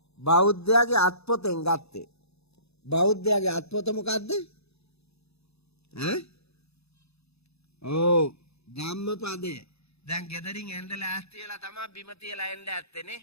බෞද්ධයාගේ අත්පොතෙන් ගත්තේ. බෞද්ධයාගේ අත්පොත මොකද්ද? ඔව් ධම්මපදය. දැන් ගෙදරින් එන්න ලෑස්ති වෙලා තමයි බිම තියලා එන්න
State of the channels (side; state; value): right; late; 0.79 ms